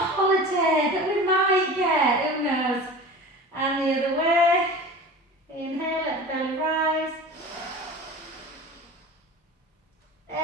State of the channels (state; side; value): normal; both; correlation 0.36